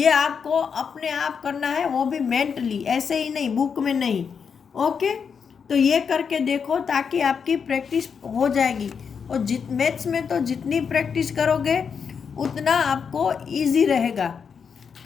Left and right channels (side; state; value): right; quieter; 6.4 dB